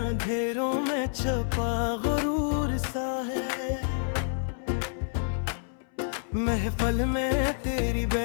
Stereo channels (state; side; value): silent; right; 59 dB below the other